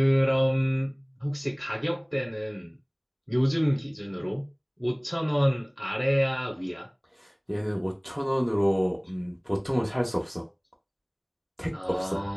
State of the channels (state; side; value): identical; both; correlation 1.00